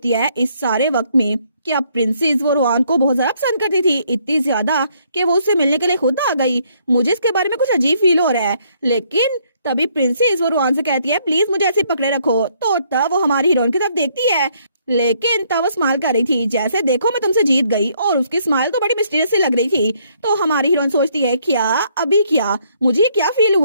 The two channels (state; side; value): inverted; both; correlation -0.68